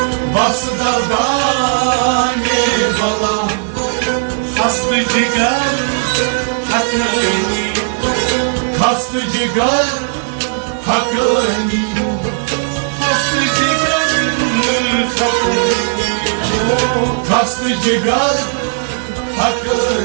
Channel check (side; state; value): left; silent; 57 dB below the other